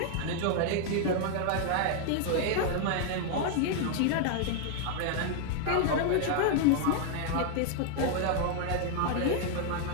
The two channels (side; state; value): both; different; correlation 0.00